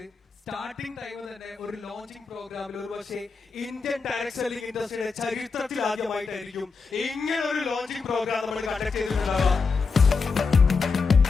സ്റ്റാർട്ടിംഗ് ടൈം തന്നെ ഒരു ലോഞ്ചിങ് പ്രോഗ്രാമിൽ ഒരു പക്ഷേ ഇന്ത്യൻ ഡയറക്ട് സെല്ലിംഗ് ഇൻഡസ്ട്രിയുടെ ചരിത്രത്തിൽ ആദ്യമായിട്ടായിരിക്കും ഇങ്ങനെ ഒരു ലോഞ്ചിങ് പ്രോഗ്രാം നമ്മൾ conduct ചെയ്തിട്ടുണ്ടാവുക.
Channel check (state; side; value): quieter; right; 4.8 dB